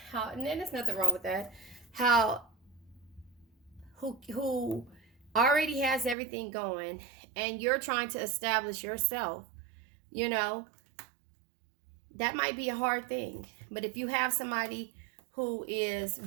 how, and then there's nothing wrong with that, who already has everything going, and you're trying to establish yourself, you know, that might be a hard thing. But if you have somebody who is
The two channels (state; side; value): drops out; left; at 6.2 s